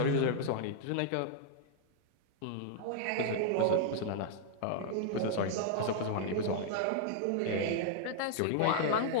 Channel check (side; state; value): both; different; correlation 0.00